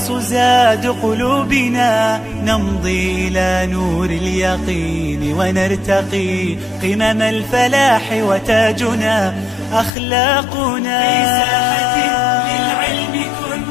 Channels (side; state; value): right; drops out; at 9.9 s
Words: زاد قلوبنا، نمضي إلى نور اليقين ونرتقي قمم الفلاح وتاجنا أخلاقنا. في ساحة للعلم